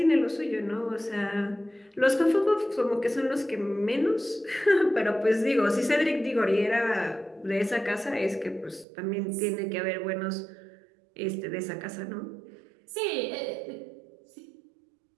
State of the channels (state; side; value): drops out; left; at 8.8 s